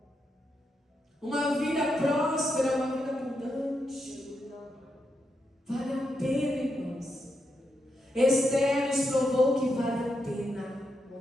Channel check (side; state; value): both; normal; correlation 0.83